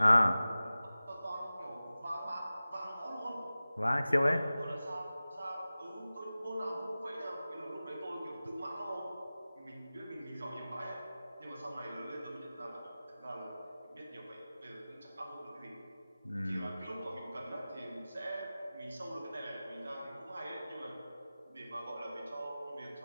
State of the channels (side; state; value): both; inverted; correlation -0.96